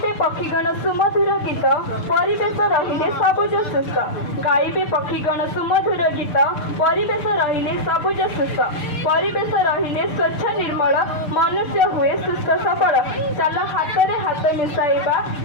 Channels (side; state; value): right; late; 6.7 ms